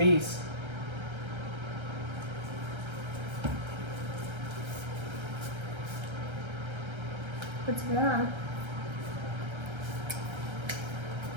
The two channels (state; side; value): late; left; 1.3 ms